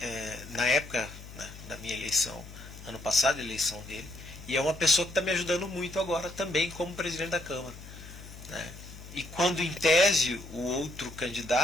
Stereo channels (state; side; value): noise; left; hum, 15 dB below the sound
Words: Na época, né, da minha eleição, ano passado, a eleição dele, e é uma pessoa que está me ajudando muito agora também como presidente da Câmara, né. E quando, em tese, o outro